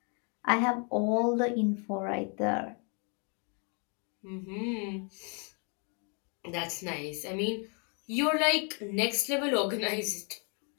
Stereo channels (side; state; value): right; quieter; 37.9 dB